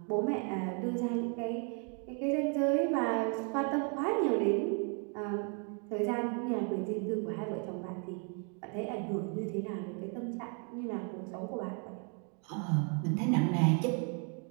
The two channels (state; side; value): quieter; left; 39.6 dB